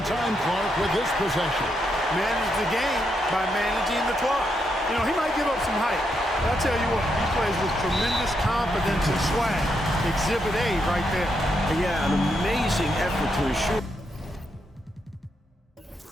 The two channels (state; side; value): normal; both; correlation 0.81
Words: time, Clark, with this possession. Manage the game by managing the clock. You know, he might give up some height, but I'll tell you what, he plays with tremendous confidence and swag. Exhibit A right there. Yeah, an amazing effort to ensure